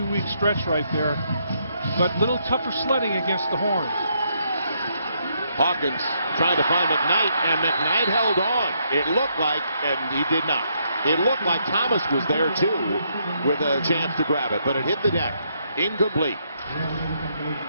stretch right there. But a little tougher sledding against the Horns. Hawkins trying to find McKnight, and McKnight held on. It looked like, and he did not. It looked like Thomas was there too with a chance to grab it, but it hit the deck. Incomplete.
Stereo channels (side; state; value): both; inverted; correlation -0.74